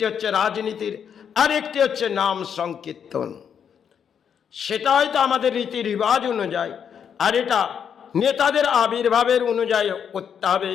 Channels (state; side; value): quieter; right; 7.8 dB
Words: হচ্ছে রাজনীতির, আর একটি হচ্ছে নাম সংকীর্তন। সেটা হয়তো আমাদের রীতি রেওয়াজ অনুযায়ী, আর এটা নেতাদের আবির্ভাবের অনুযায়ী করতে হবে,